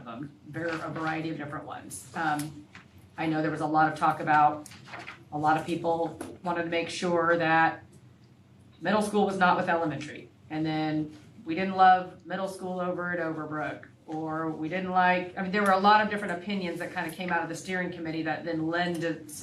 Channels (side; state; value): both; identical; correlation 1.00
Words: them, a variety of different ones. I know there was a lot of talk about, a lot of people wanted to make sure that middle school was not with elementary. And then we didn't love middle school over at Overbrook, or we didn't like, I mean, there were a lot of different opinions that kind of came out of the steering committee that then lend